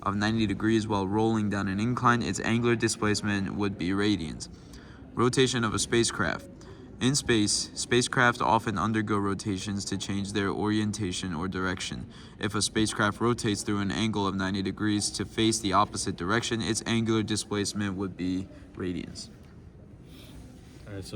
of 90 degrees while rolling down an incline, its angular displacement would be radians. Rotation of a spacecraft. In space, spacecraft often undergo rotations to change their orientation or direction. If a spacecraft rotates through an angle of 90 degrees to face the opposite direction, its angular displacement would be radians. All right,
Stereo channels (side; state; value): both; identical; correlation 1.00